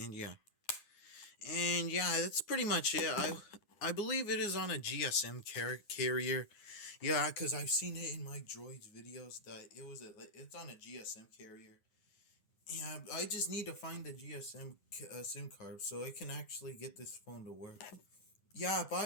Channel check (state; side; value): late; right; 9.7 ms